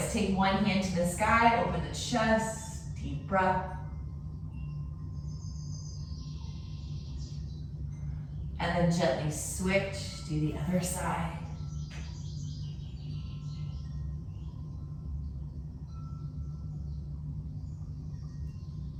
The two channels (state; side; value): identical; both; correlation 1.00